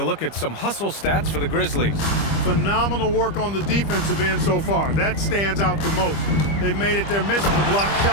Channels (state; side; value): late; right; 25 ms